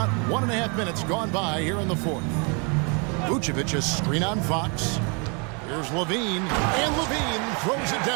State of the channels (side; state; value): left; quieter; 34.3 dB